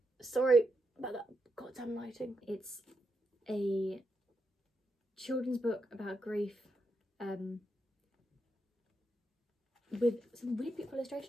Sorry about that goddamn lighting. It's a children's book about grief, with some really beautiful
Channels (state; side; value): normal; both; correlation 0.83